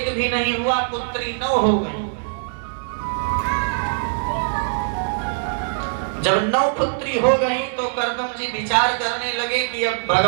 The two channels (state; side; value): silent; left; digital silence